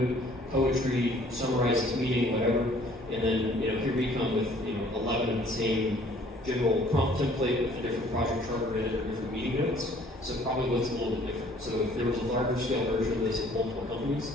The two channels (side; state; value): both; normal; correlation 0.57